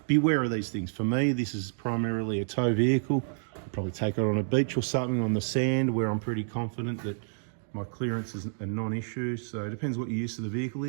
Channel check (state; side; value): silent; left; digital silence